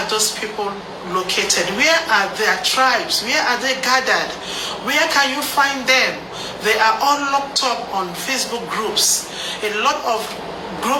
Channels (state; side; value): identical; both; correlation 1.00